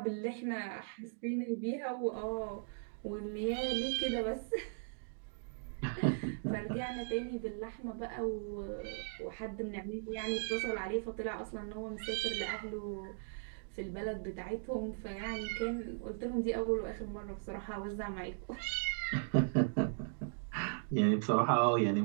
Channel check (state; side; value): silent; left; digital silence